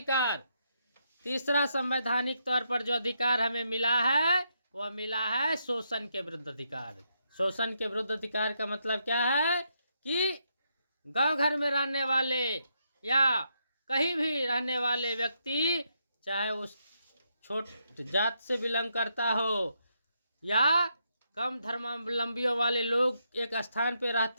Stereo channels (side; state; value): both; inverted; correlation -0.79